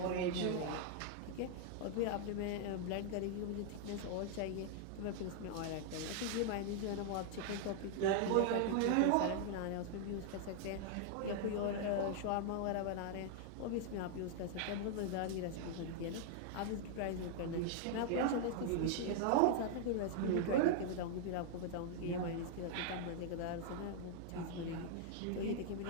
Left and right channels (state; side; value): different; both; correlation 0.00